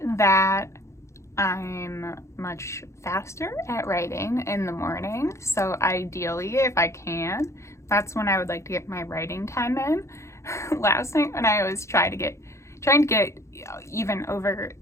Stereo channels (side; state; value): right; late; 0.14 ms